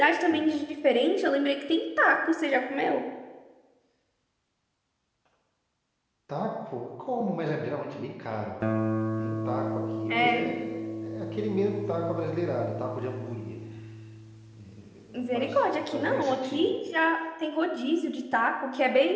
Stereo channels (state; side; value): identical; both; correlation 1.00